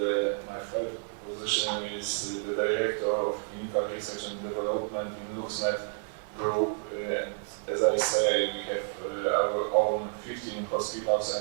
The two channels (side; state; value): left; silent; digital silence